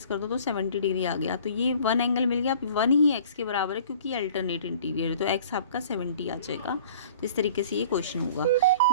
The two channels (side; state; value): both; inverted; correlation -0.49